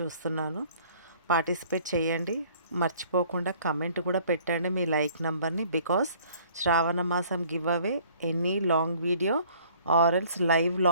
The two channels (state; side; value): inverted; both; correlation -0.55